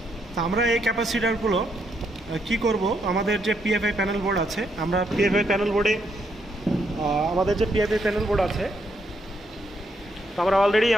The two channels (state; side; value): normal; both; correlation 0.76